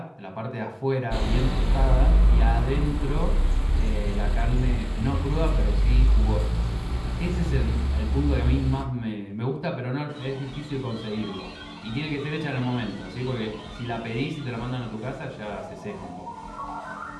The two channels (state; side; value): identical; both; correlation 1.00